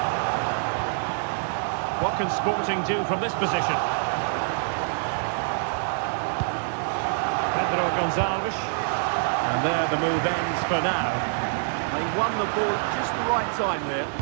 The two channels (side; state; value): left; silent; digital silence